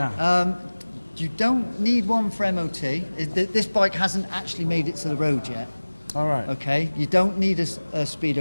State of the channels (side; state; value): both; inverted; correlation -1.00